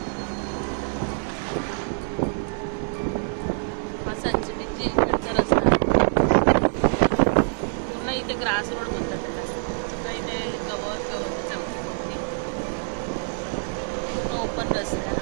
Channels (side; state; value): left; silent; 61 dB below the other